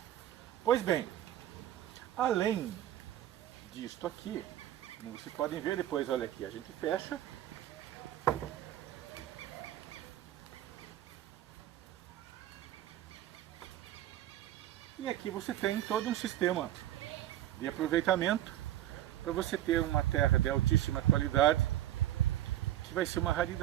Pois bem, além disto aqui, como vocês podem ver depois, olha aqui, a gente fecha. E aqui você tem todo um sistema de aproveitamento para você ter uma terra de altíssima qualidade, que vai ser uma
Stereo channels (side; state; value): left; quieter; 13.1 dB